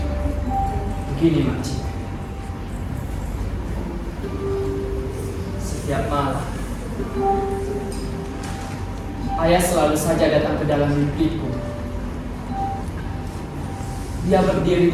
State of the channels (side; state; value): both; identical; correlation 1.00